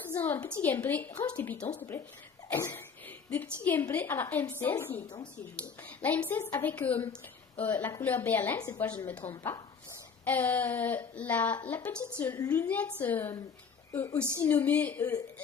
faisons un petit gameplay. Range tes pitons, s'il te plaît. Des petits gameplays à la M16. La M16 avec la couleur Berlin, cette fois je ne me trompe pas. La petite lunette aussi nommée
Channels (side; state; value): right; quieter; 6.0 dB